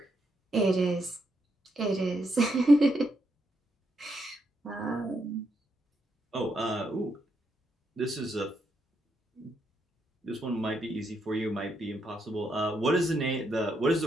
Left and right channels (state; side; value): normal; both; correlation 0.79